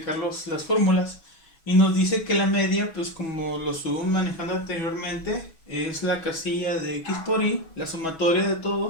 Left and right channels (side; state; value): right; late; 6.1 ms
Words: las fórmulas. Y nos dice que la media, pues como lo estuvimos manejando anteriormente, es la casilla de x por y, la sumatoria de